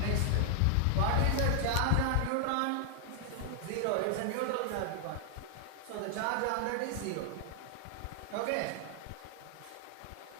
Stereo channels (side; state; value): both; different; correlation 0.00